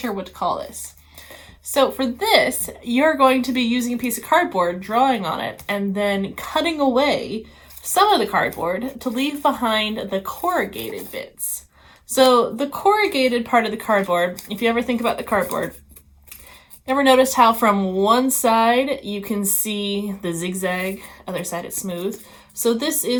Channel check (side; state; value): both; identical; correlation 1.00